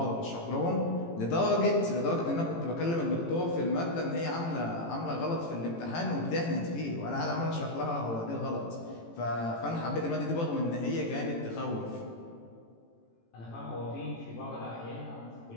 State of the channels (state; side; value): late; right; 18 ms